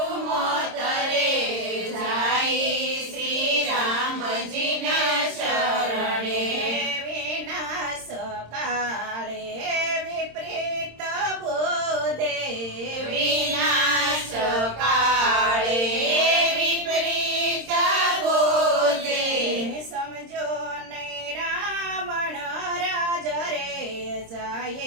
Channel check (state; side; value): late; left; 26 ms